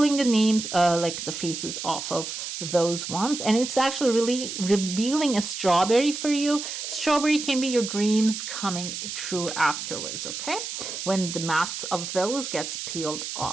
the names, like the faces off of those ones. And it's actually really revealing a strawberry for you. Strawberry can be your dreams coming true afterwards, okay? When the masks of those gets peeled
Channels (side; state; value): right; noise; hiss, 6 dB below the sound